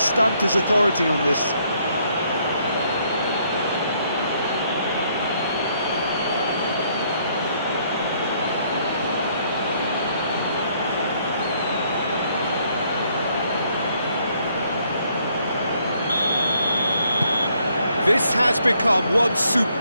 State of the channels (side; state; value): both; inverted; correlation -0.69